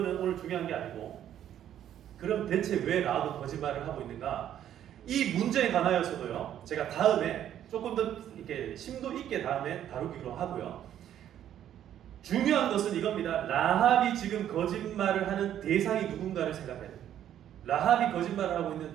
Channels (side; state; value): left; quieter; 10.8 dB